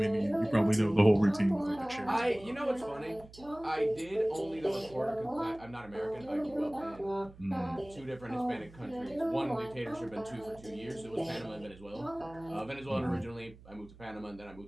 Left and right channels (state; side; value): noise; right; hum, 21 dB below the sound